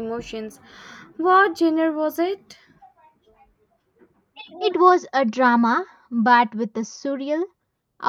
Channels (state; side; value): identical; both; correlation 1.00